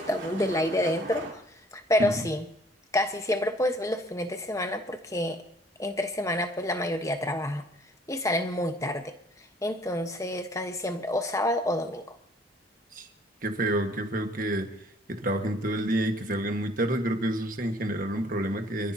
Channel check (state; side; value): normal; both; correlation 0.58